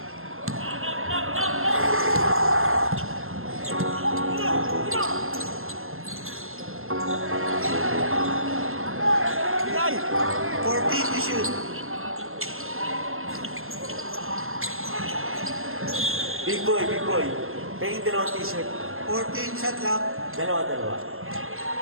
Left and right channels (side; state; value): left; late; 0.61 ms